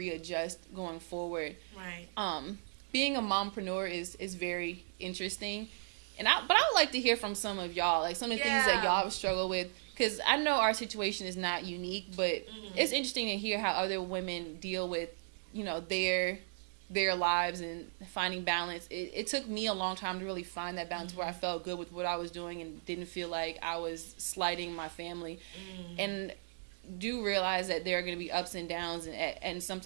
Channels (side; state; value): left; silent; 54 dB below the other